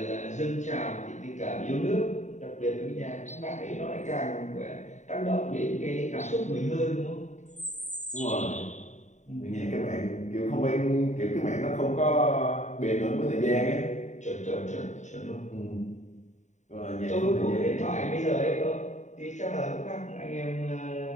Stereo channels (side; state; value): right; late; 0.34 ms